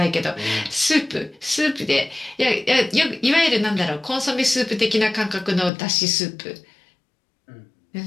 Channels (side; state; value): right; drops out; at 5.7 s